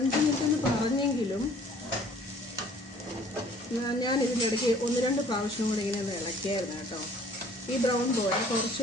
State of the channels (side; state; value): both; normal; correlation 0.55